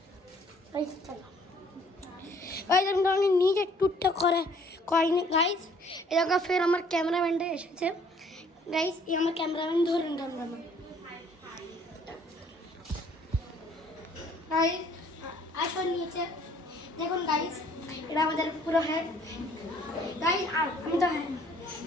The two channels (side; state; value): both; normal; correlation 0.59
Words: চলো আমি নিজে ট্যুরটা করিনি গাইস। এরকম ফের আমার ক্যামেরাম্যানটা এসেছে গাইস। এই আমার ক্যামেরাম্যান ধরুন ক্যামেরাম্যান গাইস আসো নিচে দেখুন গাইস। এটা আমাদের পুরো হেড গাইস। আমি তো হ্যাঁ